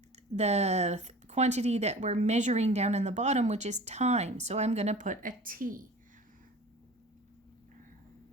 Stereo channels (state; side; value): normal; both; correlation 0.40